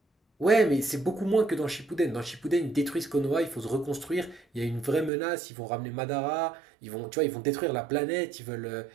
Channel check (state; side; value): drops out; left; at 5.1 s